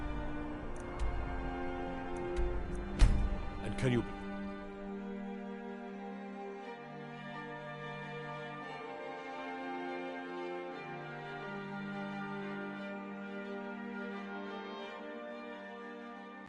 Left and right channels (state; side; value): identical; both; correlation 1.00